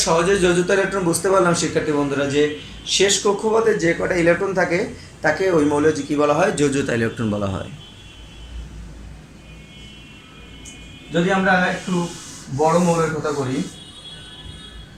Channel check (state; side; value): identical; both; correlation 1.00